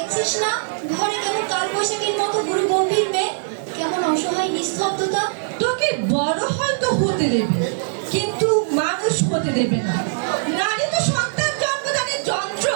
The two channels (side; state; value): left; silent; digital silence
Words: না ঘরে কেমন কাল বৈশাখীর মতো গুরু গম্ভীর মেয়ে, কেমন অসহায় নিস্তব্ধতা। তোকে বড় হয়তো হতে দেবে, কিন্তু মানুষ হতে দেবে না। নারী তো সন্তান জন্মদানের যন্ত্র,